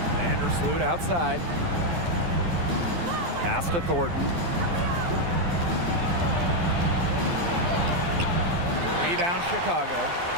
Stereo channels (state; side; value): late; left; 12 ms